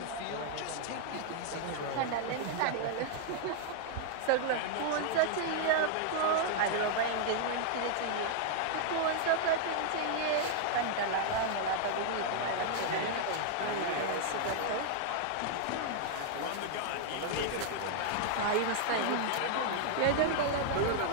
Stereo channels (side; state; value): both; different; correlation -0.01